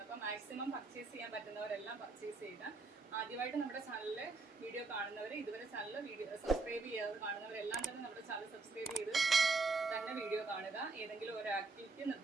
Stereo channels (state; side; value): quieter; left; 3.8 dB